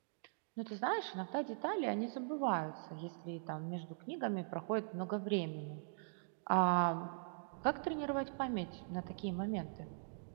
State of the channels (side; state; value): left; silent; digital silence